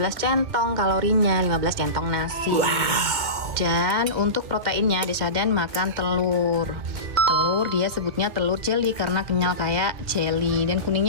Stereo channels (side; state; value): left; late; 2.2 ms